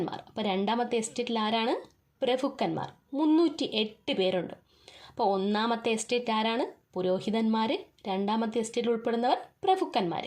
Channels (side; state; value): both; identical; correlation 1.00